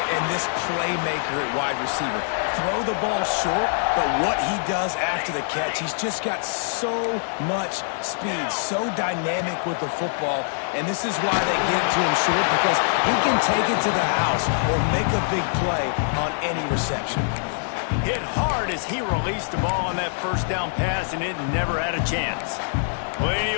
and this playmaker at wide receiver. Throw the ball short, but what he does after the catch, he's just got so much speed, so dynamic with the football, and this is why they get it to him short, because he can take it to the house or make a big play on any reception. Hit hard as he released the ball on that first down pass, and it never had a chance. Plenty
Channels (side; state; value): right; silent; 63 dB below the other